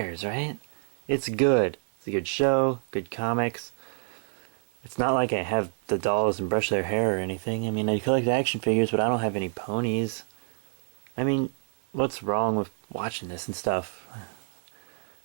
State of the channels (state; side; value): silent; left; digital silence